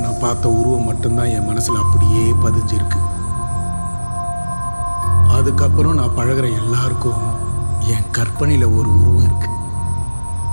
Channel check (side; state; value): both; inverted; correlation -1.00